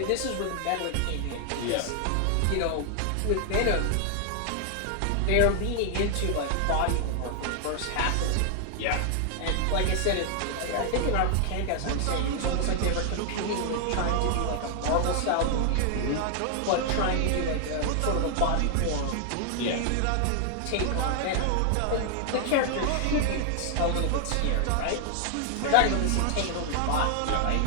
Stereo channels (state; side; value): different; both; correlation 0.00